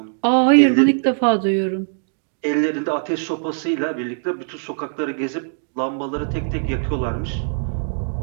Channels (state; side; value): silent; left; digital silence